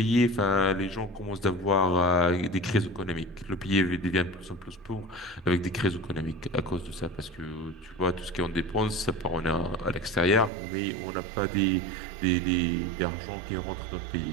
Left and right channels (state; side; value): drops out; left; at 10.5 s